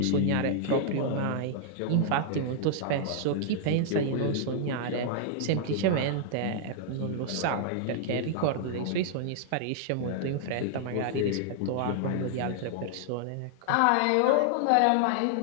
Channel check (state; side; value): different; both; correlation -0.01